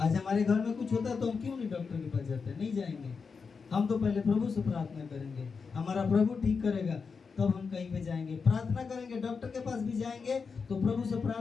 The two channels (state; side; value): quieter; right; 5.3 dB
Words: हमारे घर में कुछ होता है तो हम क्यों नहीं डॉक्टर के पास जाते? नहीं जाएंगे। हम तो पहले प्रभु से प्रार्थना करेंगे, हमारा प्रभु ठीक करेगा, तब हम कहीं पे जाएंगे। प्रार्थना करेंगे, डॉक्टर के पास भी जाएंगे तो प्रभु से